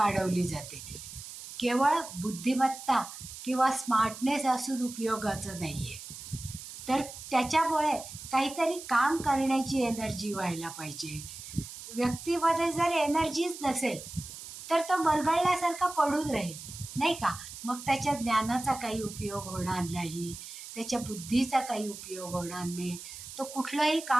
जाते. केवळ बुद्धिमत्ता किंवा स्मार्टनेस असून उपयोगाचं नाही आहे, तर त्याच्यामुळे काहीतरी काम करण्याची एनर्जी व्हायला पाहिजे. व्यक्तीमध्ये जर एनर्जीच नसेल तर तो मरगळल्यासारखा पडून राहील, नाही का? मग त्याच्या ज्ञानाचा काही उपयोग होणार नाही, त्याच्या बुद्धीचा काही उपयोग होणार नाही, तो कुठलंही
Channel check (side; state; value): right; noise; hiss, 12 dB below the sound